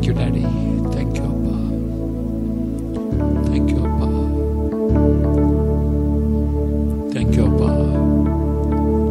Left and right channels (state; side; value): identical; both; correlation 1.00